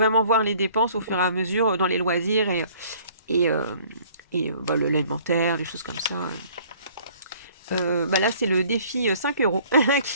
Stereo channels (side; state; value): both; inverted; correlation -0.55